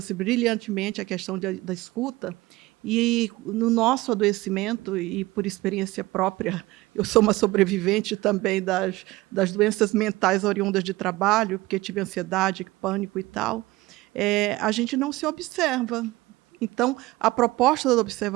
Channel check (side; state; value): left; quieter; 19.6 dB